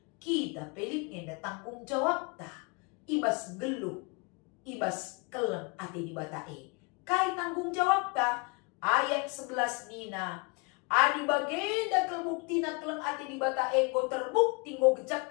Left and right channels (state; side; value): quieter; right; 30.7 dB